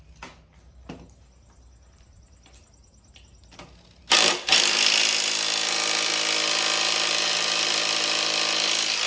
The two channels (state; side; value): identical; both; correlation 1.00